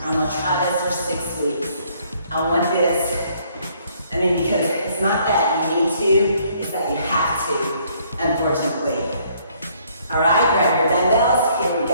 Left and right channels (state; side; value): inverted; both; correlation -0.64